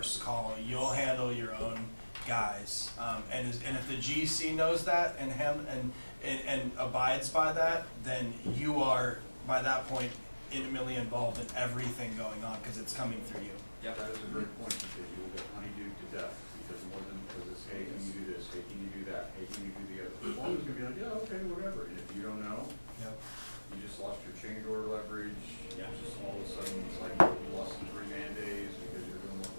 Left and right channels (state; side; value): inverted; both; correlation -1.00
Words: call. You'll handle your own guys. And if the GC knows that and abides by that, then you are, by that point, intimately involved in everything going on because it's coming through you. Yep. That is a great point, because you will get honeydewed to death, because it's, hey, can you do this, hey, can you do that, hey, can you do the other? The foreman's gonna be like, yeah, okay, whatever, and if you don't know, Yep. you just lost your change order leverage, Yeah. just all of a sudden, it's like you lost 3 man days because you're